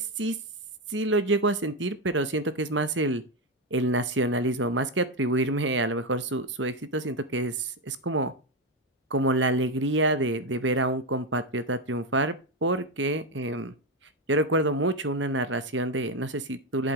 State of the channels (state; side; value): normal; both; correlation 0.09